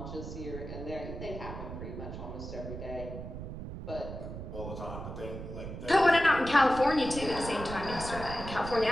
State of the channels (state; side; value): noise; right; rumble, 8 dB below the sound